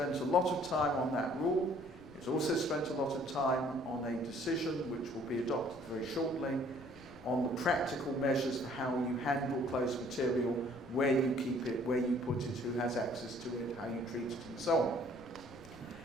a lot of time on that rule. It's also spent a lot of time on a decision which will be adopted very shortly on the practical measures for how you handle closed material, where you keep it, where you put it, who has access to it, how you treat it, and so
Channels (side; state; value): left; noise; rumble, 21 dB below the sound